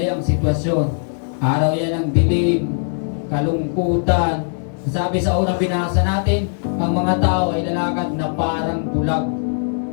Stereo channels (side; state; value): right; silent; 57 dB below the other